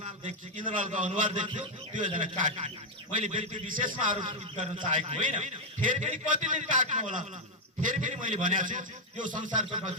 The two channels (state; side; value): normal; both; correlation 0.00